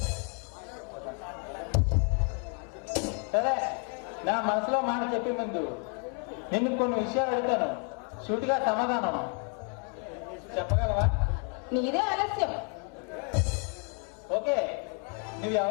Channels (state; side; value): quieter; right; 38.3 dB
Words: సరే, నా మనసులో మాట చెప్పే ముందు నిన్ను కొన్ని విషయాలు అడుగుతాను. సూటిగా సమాధానం చెప్పగలవా? నీదే ఆలస్యం. ఓకే, నువ్వు